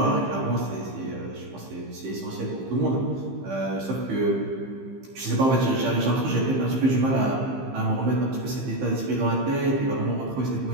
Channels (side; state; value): left; late; 15 ms